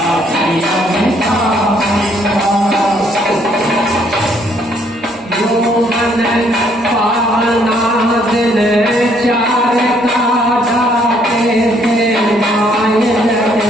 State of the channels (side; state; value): both; normal; correlation 0.67